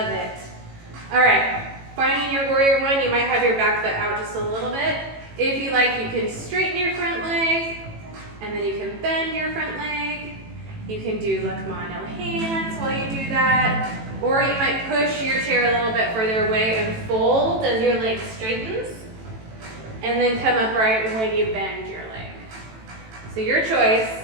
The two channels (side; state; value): left; late; 18 ms